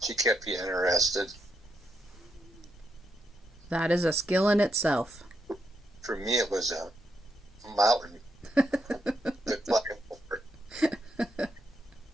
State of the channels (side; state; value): both; normal; correlation 0.80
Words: She kept you interested. That is a skill in itself. For me, it was a mountain.